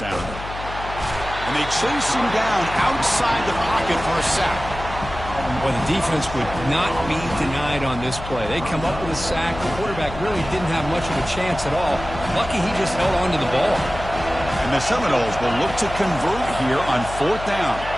And they chase him down outside the pocket for a sack. Well, the defense would not be denied on this play. They come up with a sack. The quarterback really didn't have much of a chance at all. Lucky he just held on to the ball. And the Seminoles will look to convert here on 4th down.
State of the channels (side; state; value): left; noise; hum, 11 dB below the sound